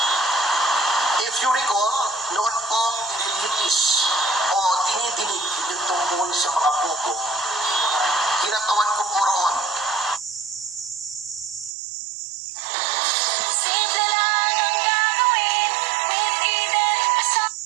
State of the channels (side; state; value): left; drops out; at 11.8 s